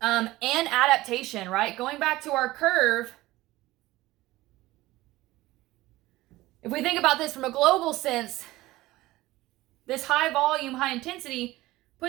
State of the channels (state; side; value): quieter; left; 18.0 dB